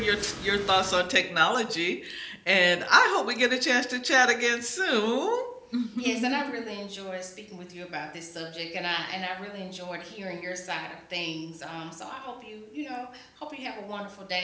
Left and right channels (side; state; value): both; identical; correlation 1.00